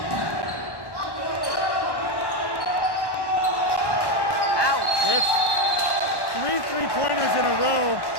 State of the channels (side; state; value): right; late; 1.1 ms